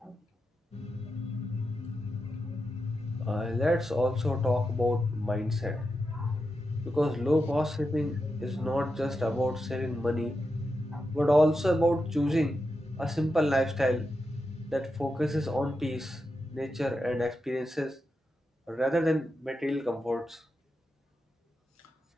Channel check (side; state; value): both; normal; correlation 0.88